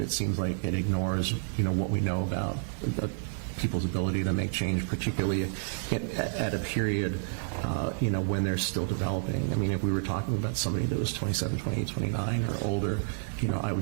it seems like it ignores, what we know about people's ability to make change, particularly at a period, when they're still developing. I mean, if we were talking about somebody that was 27, 28, 29 or older, I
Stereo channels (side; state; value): left; silent; digital silence